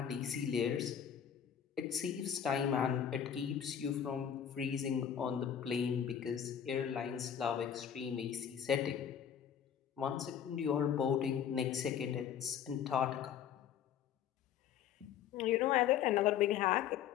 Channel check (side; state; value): right; quieter; 8.9 dB